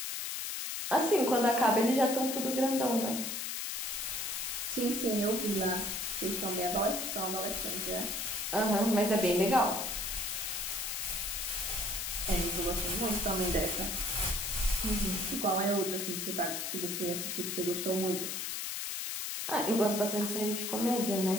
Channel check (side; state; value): left; noise; hiss, 3 dB below the sound